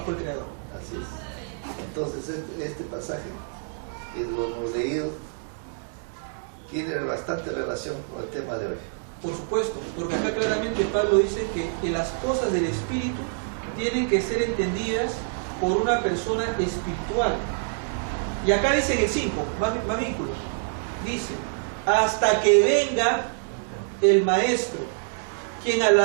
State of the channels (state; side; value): silent; left; digital silence